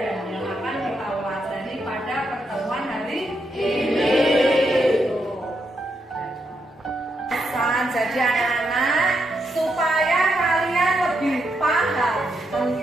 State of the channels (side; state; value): both; normal; correlation 0.81